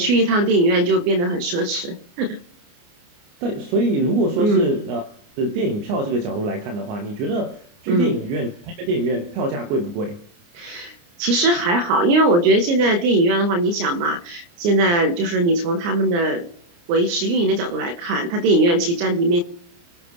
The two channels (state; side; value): late; left; 29 ms